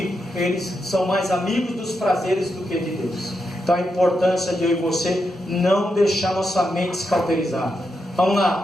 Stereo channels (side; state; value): both; normal; correlation 0.85